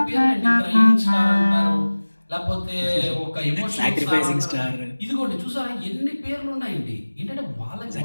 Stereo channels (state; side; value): inverted; both; correlation -1.00